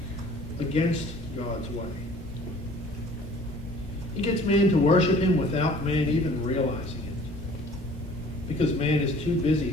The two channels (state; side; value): normal; both; correlation 0.50